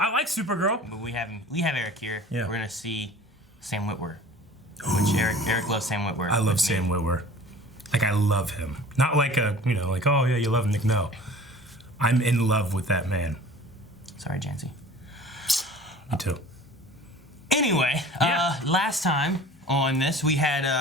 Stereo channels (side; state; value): both; normal; correlation 0.45